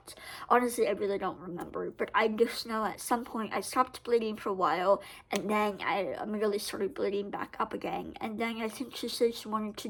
Honestly, I really don't remember, but I just know at some point I stopped bleeding for a while, and then I immediately started bleeding back up again. And then I think she said she wanted to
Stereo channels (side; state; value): both; identical; correlation 1.00